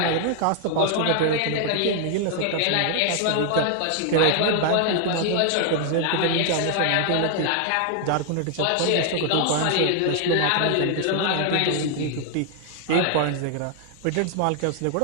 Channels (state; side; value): different; both; correlation 0.00